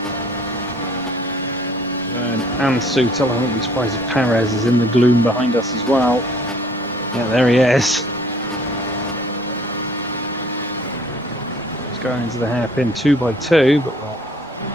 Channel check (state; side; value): normal; both; correlation 0.56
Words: Vern and Sutil. I wouldn't be surprised if Perez is in the gloom behind us as well. Yeah, there he is. He's going into the hairpin 2 by 2, but we'll